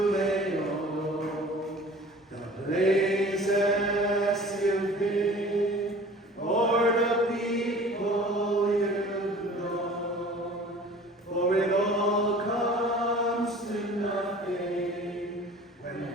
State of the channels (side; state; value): both; normal; correlation 0.45